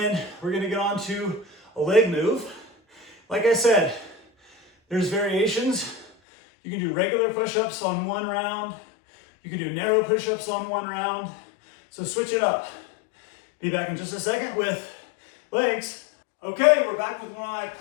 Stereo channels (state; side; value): drops out; right; at 6.1 s